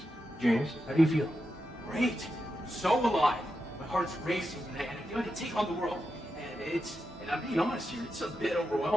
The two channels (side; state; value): both; normal; correlation 0.88